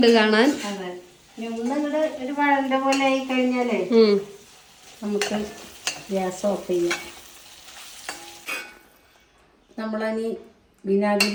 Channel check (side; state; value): both; identical; correlation 1.00